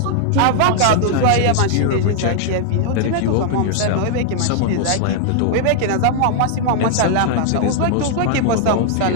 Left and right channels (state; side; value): different; both; correlation -0.01